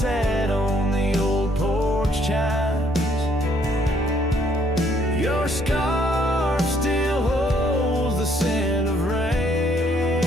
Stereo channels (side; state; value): both; normal; correlation 0.67